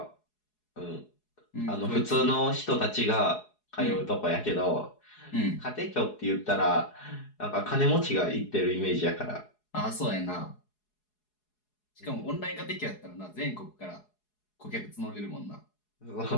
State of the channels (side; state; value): right; late; 4.8 ms